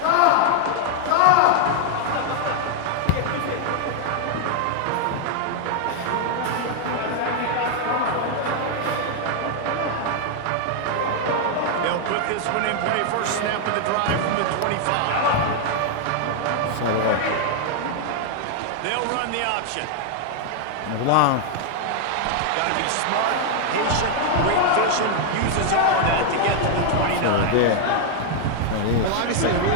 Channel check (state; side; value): different; both; correlation 0.00